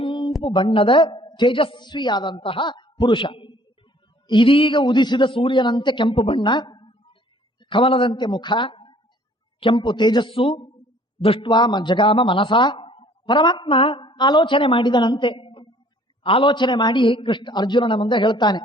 ಬಣ್ಣದ ತೇಜಸ್ವಿಯಾದಂತಹ ಪುರುಷ. ಇದೀಗ ಉದಿಸಿದ ಸೂರ್ಯನಂತೆ ಕೆಂಪು ಬಣ್ಣ, ಕಮಲದಂತೆ ಮುಖ, ಕೆಂಪು ತೇಜಸ್ಸು. ದೃಷ್ಟ್ವಾ ಜಗಾಮ ಮನಸ. ಪರಮಾತ್ಮ ಆಲೋಚನೆ ಮಾಡಿದನಂತೆ. ಆಲೋಚನೆ ಮಾಡಿ ಕೃಷ್ಣ ಅರ್ಜುನನ ಮುಂದೆ ಹೇಳ್ತಾನೆ,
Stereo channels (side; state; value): both; normal; correlation 0.56